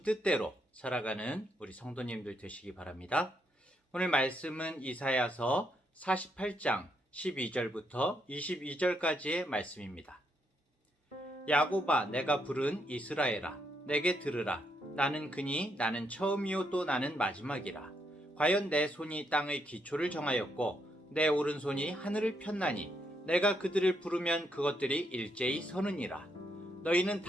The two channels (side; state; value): both; normal; correlation 0.77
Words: 뜻대로 살아가는 우리 성도님들 되시기 바랍니다. 오늘 말씀은 이사야서 48장 12절부터 22절까지의 말씀입니다. 야곱아, 내가 부른 이스라엘아, 내게 들으라. 나는 그니 나는 처음이요 또 나는 마지막이라. 과연 내 손이 땅의 기초를 정하였고 내 오른손이 하늘을 폈나니 내가 그들을 부르면 그것들이 일제히 서느니라. 너희는